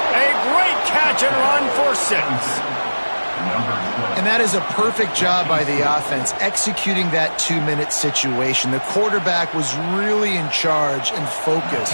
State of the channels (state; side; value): inverted; both; correlation -1.00